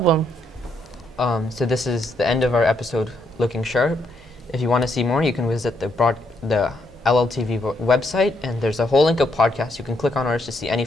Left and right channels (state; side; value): normal; both; correlation 0.75